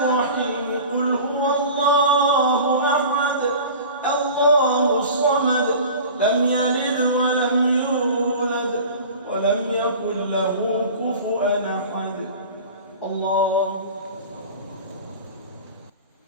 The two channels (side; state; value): both; inverted; correlation -0.38